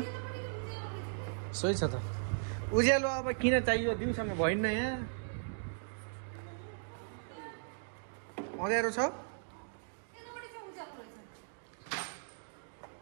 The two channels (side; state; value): left; silent; digital silence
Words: सही छ त। उज्यालो अब किन चाहियो, दिउँसोमा भइन्न यहाँ। अँध्यारो छ।